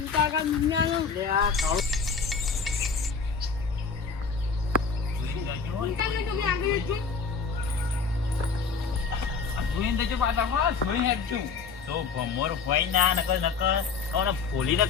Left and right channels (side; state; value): right; quieter; 5.2 dB